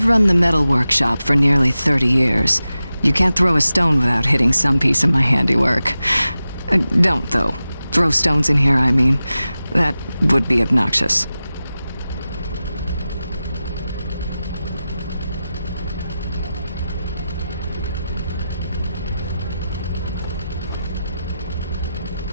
run the metal workshop for nearly 30 years. You can't throw a stone without hitting some piece of my handiwork. Don't, though. Throw stones in here, I mean. That would be obnoxious.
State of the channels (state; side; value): inverted; both; correlation -0.93